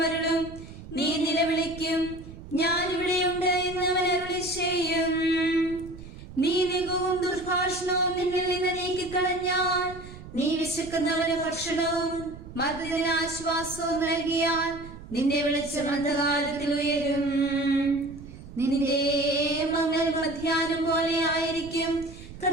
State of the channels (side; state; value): right; noise; rumble, 15 dB below the sound